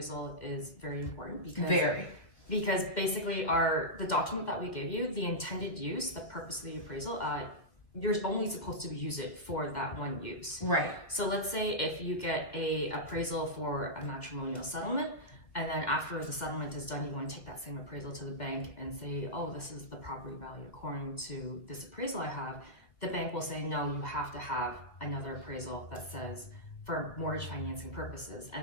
is very important because basically the document that we give you, the intended use, the purpose of the appraisal, you're only supposed to use it for that one use. Right. So let's say if you get a appraisal for a matrimonial settlement, and then after the settlement is done, you want to take that same appraisal to the bank and say, oh, this is the property value according to this appraisal I have. The bank will say, no, you have to have another appraisal that says for mortgage financing purposes.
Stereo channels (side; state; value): right; late; 2.1 ms